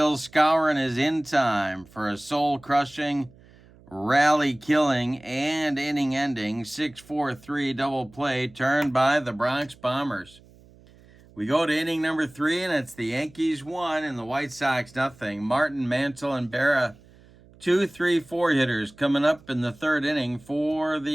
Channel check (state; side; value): noise; right; hum, 26 dB below the sound